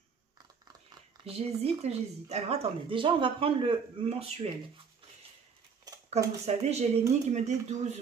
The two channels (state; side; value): quieter; left; 6.0 dB